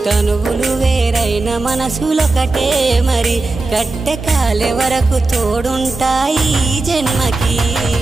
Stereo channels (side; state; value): left; quieter; 3.3 dB